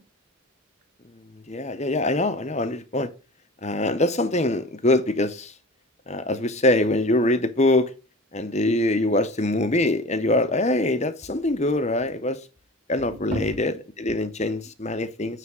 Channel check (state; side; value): normal; both; correlation 0.37